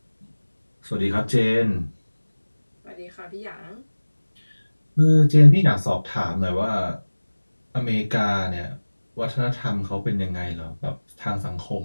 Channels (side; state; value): both; inverted; correlation -1.00